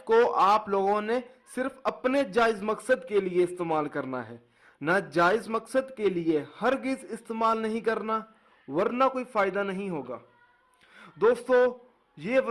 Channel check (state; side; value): identical; both; correlation 1.00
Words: को आप लोगों ने सिर्फ अपने जायज़ मकसद के लिए इस्तेमाल करना है, ना जायज़ मकसद के लिए हरगिज़ इस्तेमाल नहीं करना, वरना कोई फ़ायदा नहीं होगा। दोस्तों, ये